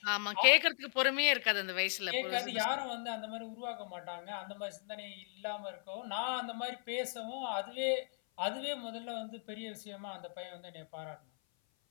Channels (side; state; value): right; silent; 53 dB below the other